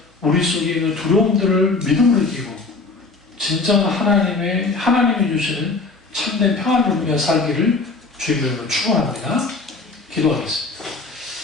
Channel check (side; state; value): right; quieter; 3.8 dB